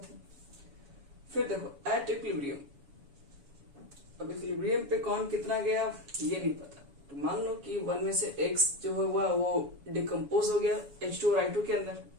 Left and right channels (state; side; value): late; left; 7.1 ms